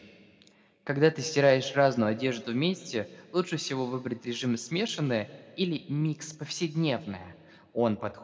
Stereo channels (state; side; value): identical; both; correlation 1.00